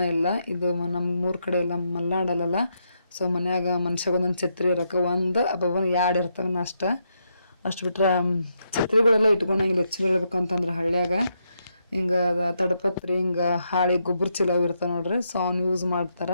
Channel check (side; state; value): both; inverted; correlation -0.80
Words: ಇಲ್ಲ. ಇದು ನಮ್ಮ ಊರ ಕಡೆ ಎಲ್ಲ ಮಲ್ನಾಡಲ್ಲ. ಸೊ ಮನ್ಯಾಗ ಮನುಷ್ಯಾಗ ಒಂದೊಂದು ಛತ್ರಿ ಇರೋಕೆ ಒಂದು ಅಬ್ಬಬ್ಬನ 2 ಇರ್ತವೆ ಅಷ್ಟು ಬಿಟ್ರೆ ಛತ್ರಿಗಳೆಲ್ಲ ಇಟ್ಕೊಂಡಂಗಿಲ್ಲ. ಹೆಚ್ಚು ಹೇಳ್ಬೇಕಂತಂದ್ರೆ ಹಳ್ಳ್ಯಾಗ ಹಿಂಗೆ ತಡಪತ್ರಿ ಹಿಂಗೆ ಹಾಳಿ ಗೊಬ್ಬರ ಚೀಲ ಇರ್ತಾವೆ ನೋಡ್ರಿ. ಸೊ ಅವ್ನು ಯೂಸ್